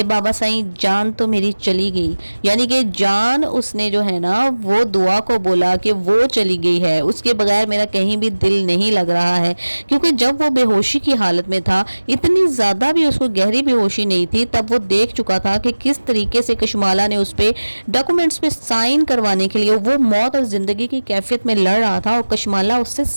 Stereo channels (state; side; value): inverted; both; correlation -1.00